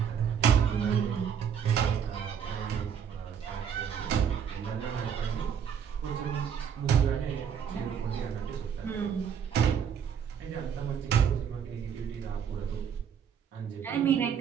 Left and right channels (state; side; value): quieter; left; 7.8 dB